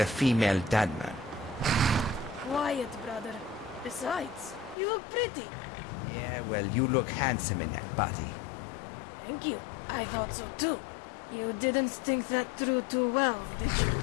female Dunmer? Quiet, brother. Besides, you look pretty. Yeah, well, you look handsome in that body. Thank you. I thought so too. You didn't think that through too well, did you?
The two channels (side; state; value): right; drops out; at 4.8 s